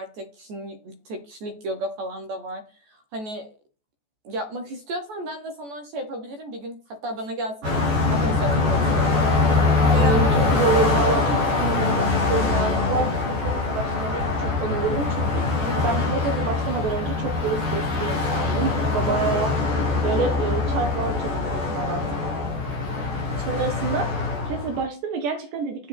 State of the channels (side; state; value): left; late; 14 ms